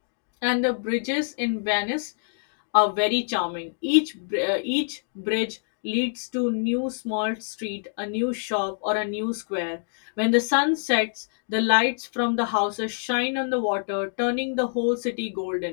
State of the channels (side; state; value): right; silent; digital silence